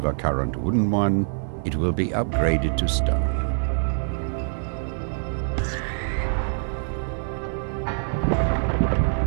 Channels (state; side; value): silent; left; 62 dB below the other